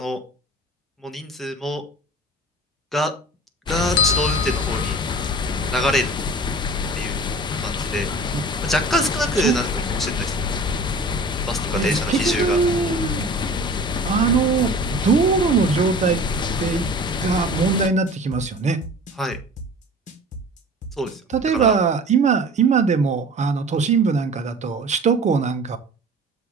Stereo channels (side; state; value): both; normal; correlation 0.41